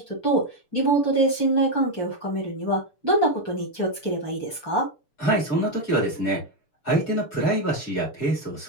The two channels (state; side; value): late; right; 6.8 ms